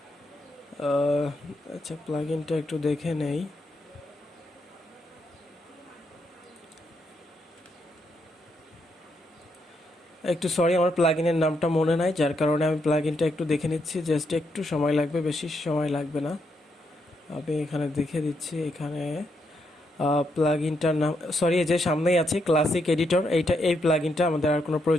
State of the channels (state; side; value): normal; both; correlation 0.79